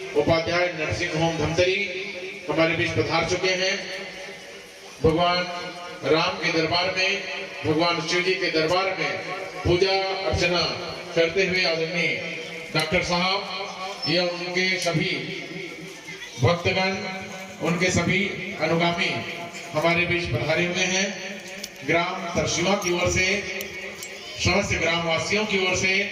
उपाध्याय नर्सिंग होम धमतरी हमारे बीच पधार चुके हैं। भगवान राम के दरबार में, भगवान शिव जी के दरबार में पूजा अर्चना करते हुए आदरणीय डॉक्टर साहब या उनके सभी भक्तगण, उनके सभी अनुगामी हमारे बीच पधारे हुए हैं। ग्राम तरसीवा की ओर से, समस्त ग्रामवासियों की ओर से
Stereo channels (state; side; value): identical; both; correlation 1.00